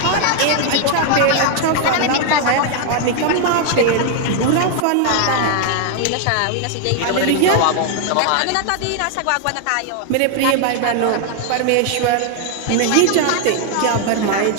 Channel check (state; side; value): different; both; correlation 0.00